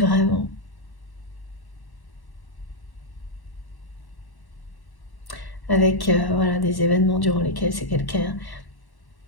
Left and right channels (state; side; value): late; right; 1.1 ms